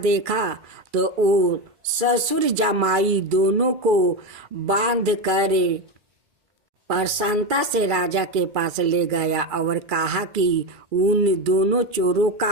तो वो ससुर जमाई दोनों को बांध कर प्रसन्नता से राजा के पास ले गया और कहा कि उन दोनों चोरों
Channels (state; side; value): late; left; 2.3 ms